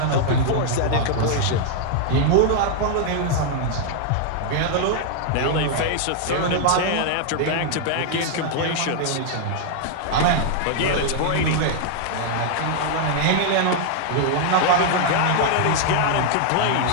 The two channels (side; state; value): both; different; correlation 0.00